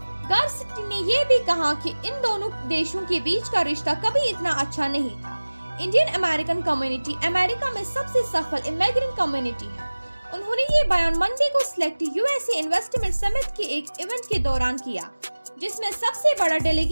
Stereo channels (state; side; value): inverted; both; correlation -1.00